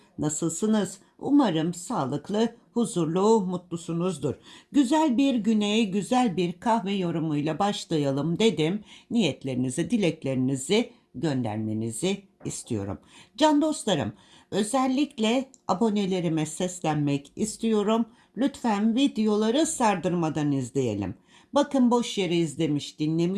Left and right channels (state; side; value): identical; both; correlation 1.00